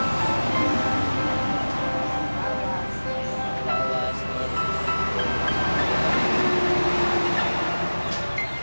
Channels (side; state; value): both; inverted; correlation -1.00